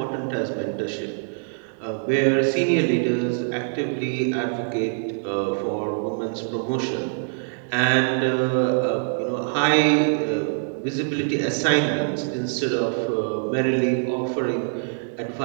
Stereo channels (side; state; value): left; silent; digital silence